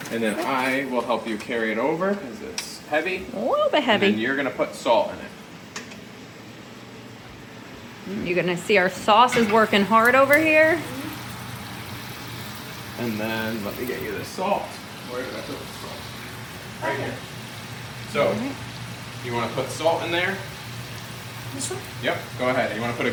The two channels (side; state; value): both; identical; correlation 1.00